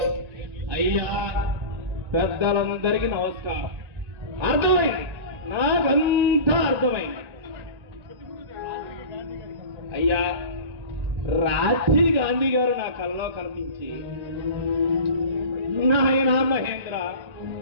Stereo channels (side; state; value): left; late; 1.8 ms